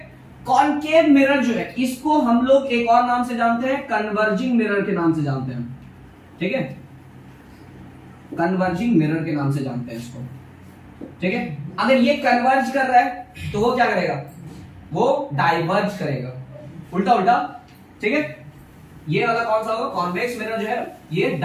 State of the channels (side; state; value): both; identical; correlation 1.00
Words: कॉनकेव मिरर जो है इसको हम लोग एक और नाम से जानते हैं, कन्वर्जिंग मिरर के नाम से जानते हैं, ठीक है, कन्वर्जिंग मिरर के नाम से जानते हैं इसको, ठीक है। अगर ये कन्वर्ज कर रहा है तो वो क्या करेगा, वो डाइवर्ज करेगा, उल्टा, ठीक है। ये वाला कौन सा होगा, कॉन्वेक्स मिरर जो है ये